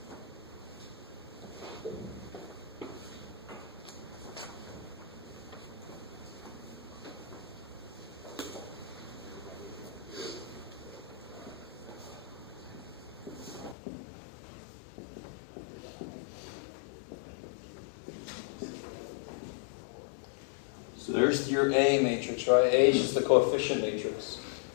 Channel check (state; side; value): drops out; right; at 13.8 s